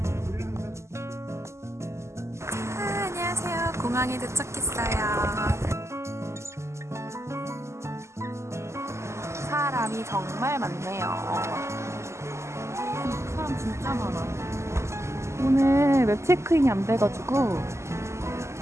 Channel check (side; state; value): left; late; 0.13 ms